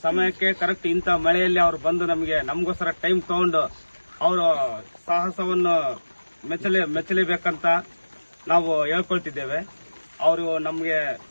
ಸಮಯಕ್ಕೆ ಕರೆಕ್ಟ್ ಇಂಥ ಮಳೆಯಲ್ಲಿ ಅವ್ರು ಬಂದು ನಮಗೋಸ್ಕರ ಟೈಮ್ ತಗೊಂಡು ಅವರು ಸಾಹಸವನ್ನು ಮೆಚ್ಚಲೇಬೇಕಂತ ನಾವು ಹೇಳ್ಕೊಳ್ತಿದ್ದೇವೆ. ಅವರು ನಮಗೆ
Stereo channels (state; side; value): inverted; both; correlation -1.00